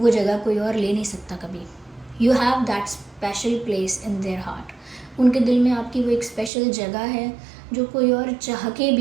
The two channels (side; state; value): left; drops out; at 6.5 s